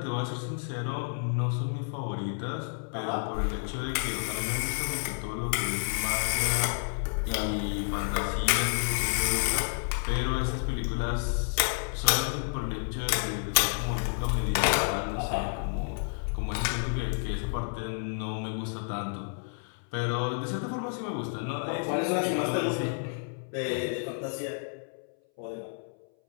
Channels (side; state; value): right; silent; 58 dB below the other